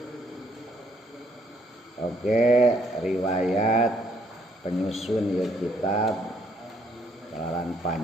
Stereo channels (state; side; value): normal; both; correlation 0.68